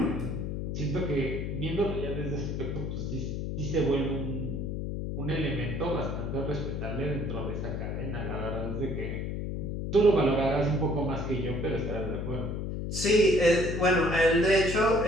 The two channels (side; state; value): left; noise; hum, 3 dB below the sound